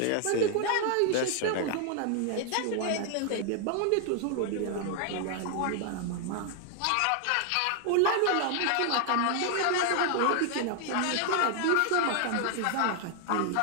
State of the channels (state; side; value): different; both; correlation 0.00